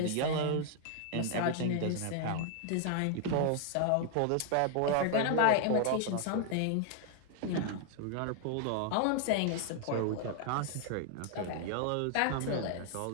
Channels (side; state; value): both; different; correlation 0.00